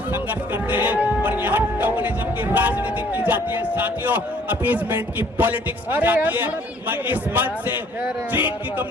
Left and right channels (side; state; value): both; normal; correlation 0.59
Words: करते हैं और यहाँ टोकनिज्म की राजनीति की जाती है। साथियों, अपीजमेंट की पॉलिटिक्स की जाती है। मैं इस मंच से चीन की